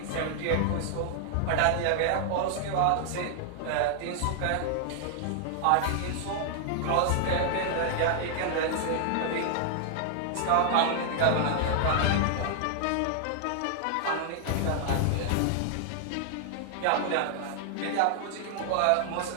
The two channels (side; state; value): both; different; correlation -0.01